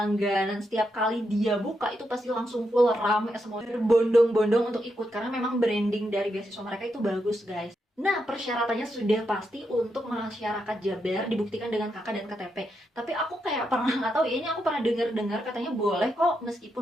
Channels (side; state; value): both; normal; correlation 0.83